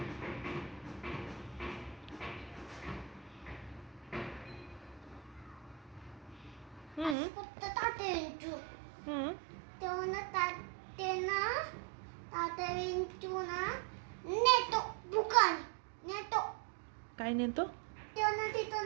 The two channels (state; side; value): drops out; left; at 7.2 s